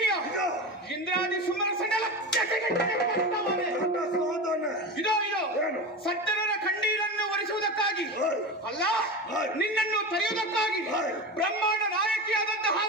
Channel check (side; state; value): both; normal; correlation 0.24